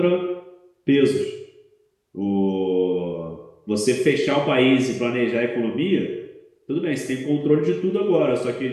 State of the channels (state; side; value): identical; both; correlation 1.00